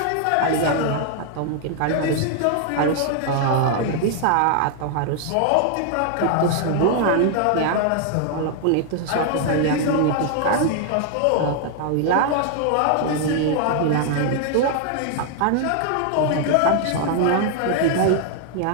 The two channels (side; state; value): both; different; correlation 0.00